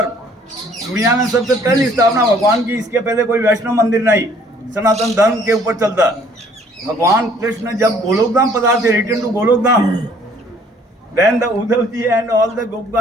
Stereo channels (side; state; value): both; normal; correlation 0.59